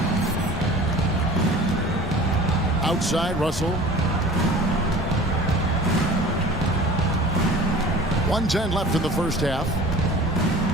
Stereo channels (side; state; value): both; normal; correlation 0.42